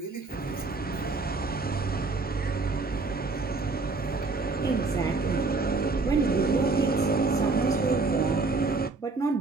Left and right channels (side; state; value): left; quieter; 3.8 dB